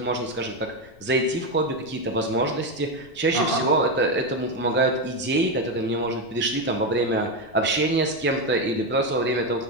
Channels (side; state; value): left; noise; rumble, 25 dB below the sound